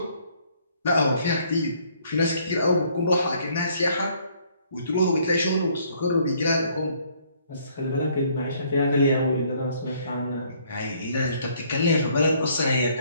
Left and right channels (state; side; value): inverted; both; correlation -0.64